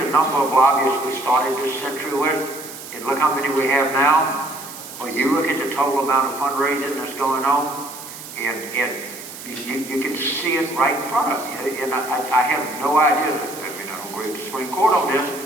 number of lobbyists we started this century with, and look how many we have now, or you look at the total amount of fundraising that's going on, and you can see it right in front of you. And I have no idea, I mean, I don't agree with the Supreme Court on this.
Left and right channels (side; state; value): right; noise; hiss, 13 dB below the sound